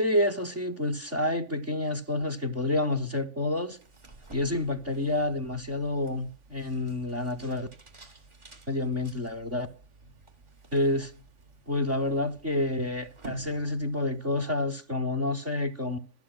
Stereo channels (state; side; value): late; left; 3.5 ms